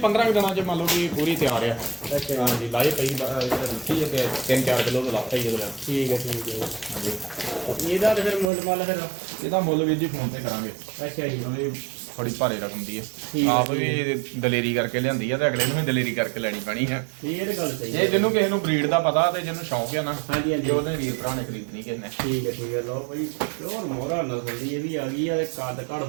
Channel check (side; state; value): left; drops out; at 8.5 s